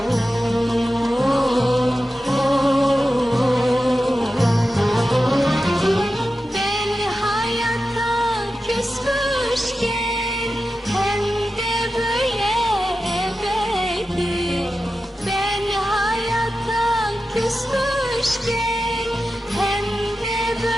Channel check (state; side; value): normal; both; correlation 0.92